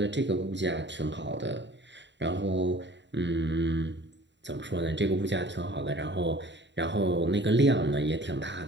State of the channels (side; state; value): left; late; 0.52 ms